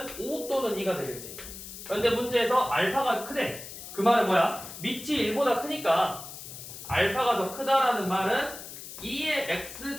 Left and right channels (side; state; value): left; noise; hiss, 12 dB below the sound